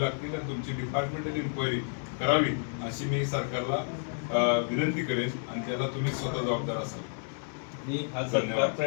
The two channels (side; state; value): right; silent; digital silence